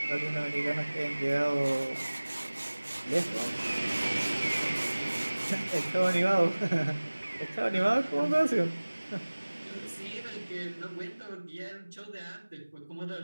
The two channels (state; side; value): inverted; both; correlation -1.00